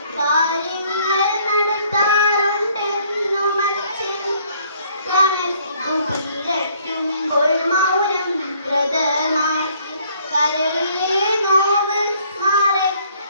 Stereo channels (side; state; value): both; inverted; correlation -0.63